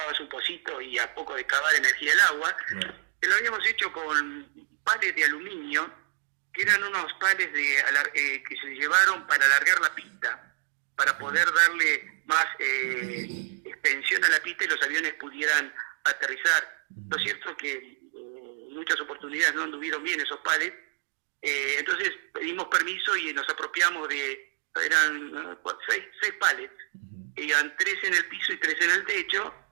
un pocito y a poco de cavar energía del agua, Claro. que lo habíamos hecho con pales de aluminio, que eran unos pales que se llevaron para alargar la pista, para poder darle más extensión a la pista y los aviones pudieran aterrizar. Lo Ujú. cierto es que en muchas oportunidades no anduvieron bien esos pales, entonces pedimos permiso y nos apropiamos eran 6 palets, Ujú. iban 3 en el piso y 3 en el techo.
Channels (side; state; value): left; silent; digital silence